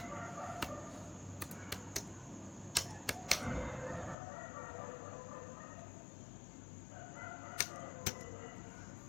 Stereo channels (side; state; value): right; drops out; at 4.2 s